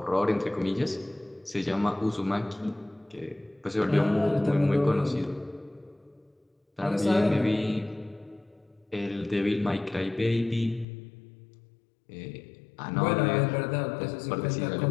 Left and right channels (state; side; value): drops out; right; at 10.9 s